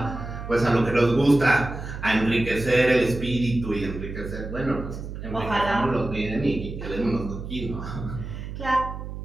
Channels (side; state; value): right; noise; hum, 9 dB below the sound